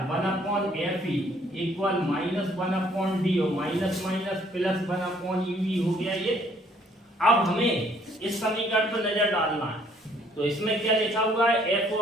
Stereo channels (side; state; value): both; normal; correlation 0.63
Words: 1/FE इक्वल माइनस 1/D और माइनस माइनस प्लस 1/UE हो गया ये। अब हमें इस समीकरण पर नजर डालना है, तो इसमें क्या लिखा हुआ है,